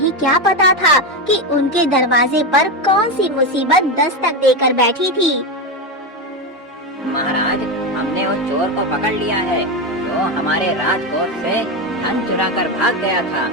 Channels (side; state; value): both; normal; correlation 0.13